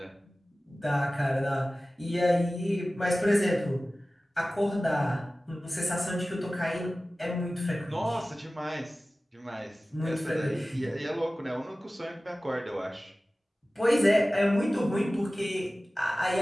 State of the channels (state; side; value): normal; both; correlation 0.97